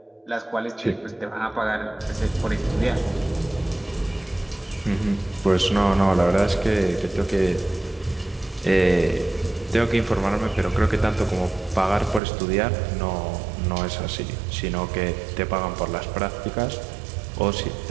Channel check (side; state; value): left; drops out; at 12.2 s